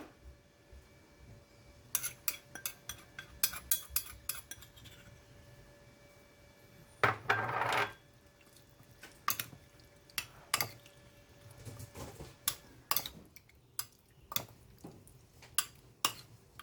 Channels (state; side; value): identical; both; correlation 1.00